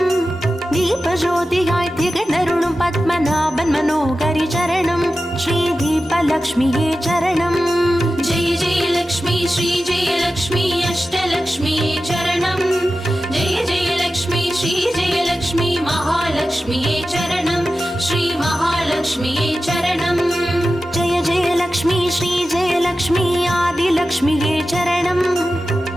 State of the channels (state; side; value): normal; both; correlation 0.93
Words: தீபஜோதியாய் திகழ்ந்தருளும் பத்மநாபன் மனோகரி சரணம் ஸ்ரீ தீபலக்ஷ்மியே சரணம். जय जय लक्ष्मी श्री जय लक्ष्मी अष्टलक्ष्मीये चरणं जय जय लक्ष्मी श्री जय लक्ष्मी महालक्ष्मीये चरणं श्री महालक्ष्मीये चरणं. जय जय लक्ष्मी श्री जय लक्ष्मी आदिलक्ष्मिये चरणं